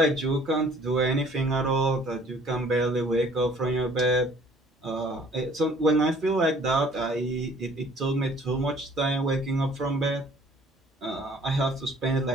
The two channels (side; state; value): both; normal; correlation 0.55